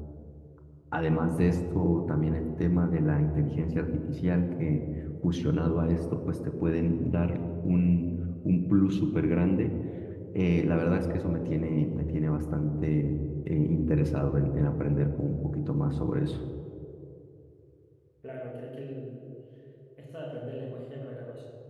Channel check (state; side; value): identical; both; correlation 1.00